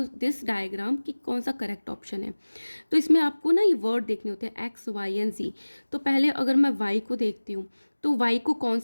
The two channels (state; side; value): inverted; both; correlation -1.00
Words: दिस डायग्राम कि कौन सा करेक्ट ऑप्शन है। तो इसमें आपको ना ये वर्ड देखने होते हैं X, Y एंड Z। तो पहले अगर मैं Y को देखती हूँ तो Y को कौन